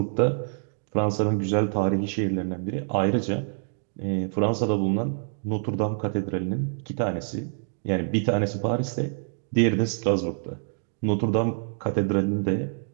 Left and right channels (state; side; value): silent; left; digital silence